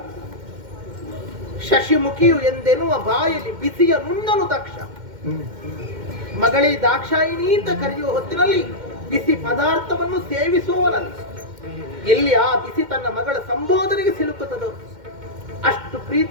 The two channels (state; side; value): late; left; 2.1 ms